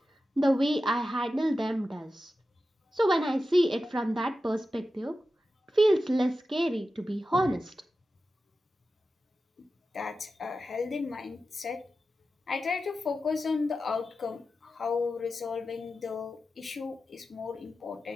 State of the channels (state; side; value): normal; both; correlation 0.92